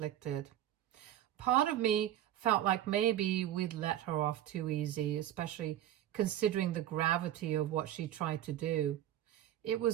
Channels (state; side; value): quieter; left; 12.1 dB